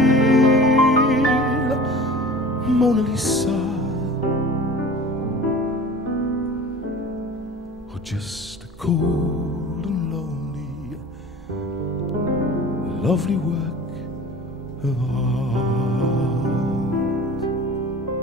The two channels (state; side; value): normal; both; correlation 0.40